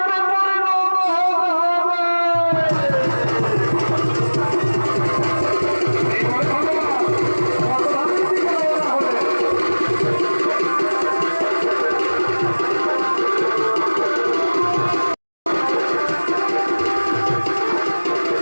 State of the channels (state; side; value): inverted; both; correlation -1.00